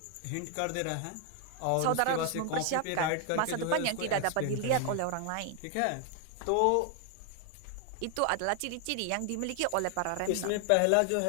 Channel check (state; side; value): different; both; correlation 0.00